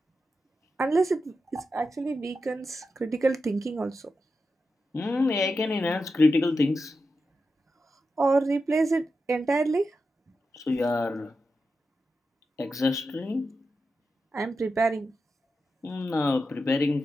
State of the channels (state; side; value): normal; both; correlation 0.89